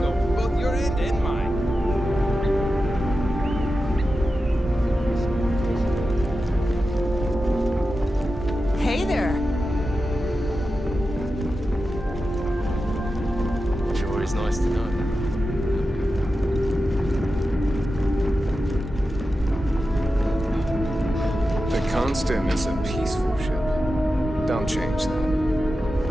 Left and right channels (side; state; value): both; normal; correlation 0.91